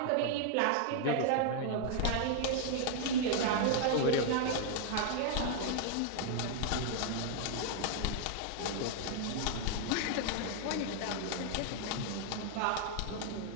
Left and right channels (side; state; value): both; different; correlation -0.01